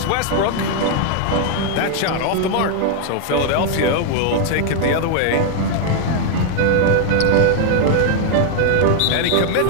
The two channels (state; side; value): different; both; correlation 0.00